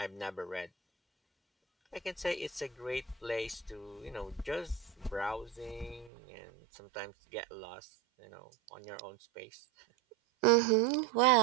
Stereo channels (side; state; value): left; drops out; at 6.1 s